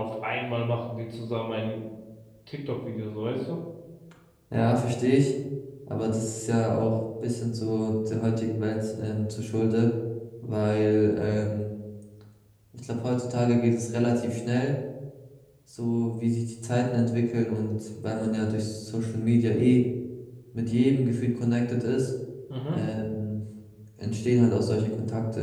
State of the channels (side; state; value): both; identical; correlation 1.00